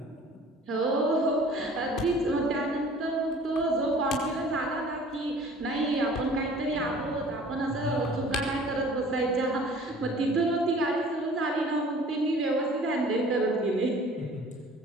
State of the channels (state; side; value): normal; both; correlation 0.49